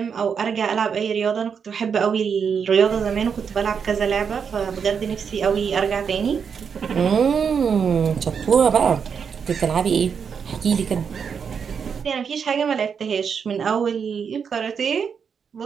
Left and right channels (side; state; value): left; quieter; 6.6 dB